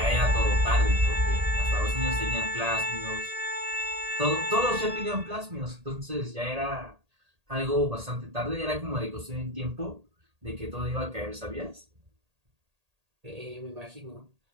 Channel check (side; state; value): left; late; 1.8 ms